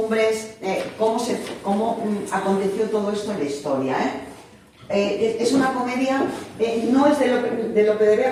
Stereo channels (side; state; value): both; identical; correlation 1.00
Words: cómo aconteció todo esto en la historia. Es una comedia, no es de Lope de